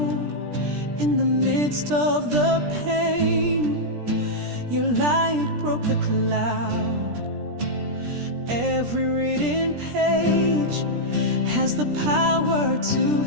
in the midst of the pain. Your light broke the cloud. Every written page has the power to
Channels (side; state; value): left; late; 17 ms